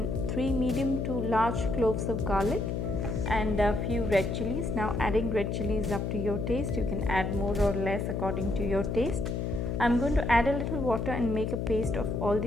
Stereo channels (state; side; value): noise; left; hum, 2 dB below the sound